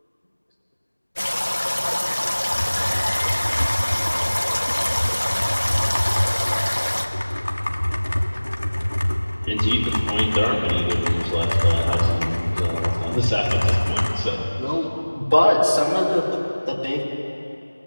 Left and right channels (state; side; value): inverted; both; correlation -1.00